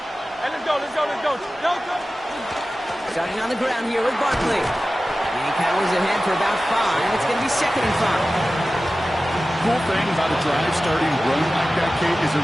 Hey, let's go. Starting on the ground here with Barkley. And he powers ahead for about 5. It's going to be 2nd and 5. Cool thing about a drive starting run like that, Kate, is it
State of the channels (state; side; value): normal; both; correlation 0.95